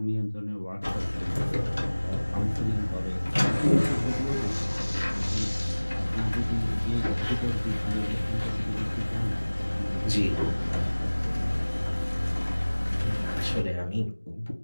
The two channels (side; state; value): both; inverted; correlation -1.00